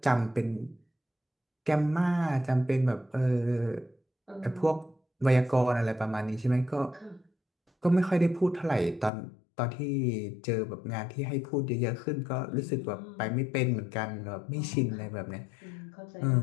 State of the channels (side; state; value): right; drops out; at 9.1 s